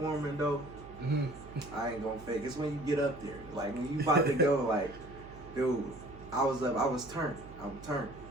though, I ain't gonna fake. It's when you get up there, like when you about to go, like, dude, I was turned. I'm turned.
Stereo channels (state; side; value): noise; right; hum, 17 dB below the sound